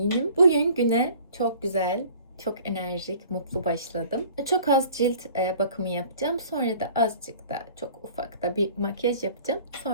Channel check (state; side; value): inverted; both; correlation -0.49